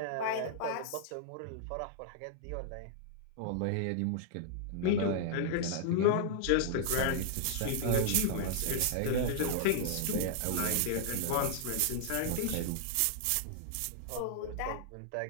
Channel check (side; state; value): both; different; correlation -0.01